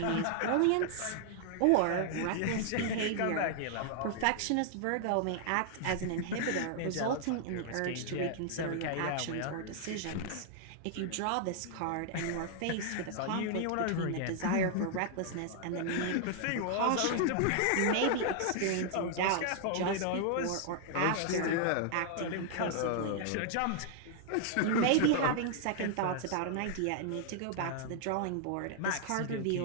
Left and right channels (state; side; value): different; both; correlation 0.00